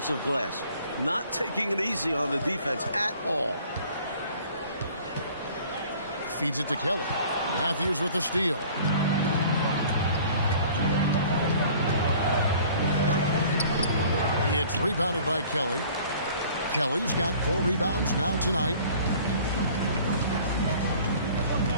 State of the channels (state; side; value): inverted; both; correlation -0.50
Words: glass. Not taking it easy on the defense at all. Feeds it to Kelly. Matthews with the steal. It's rebounded by Kelly. Kelly's got 4 rebounds now tonight.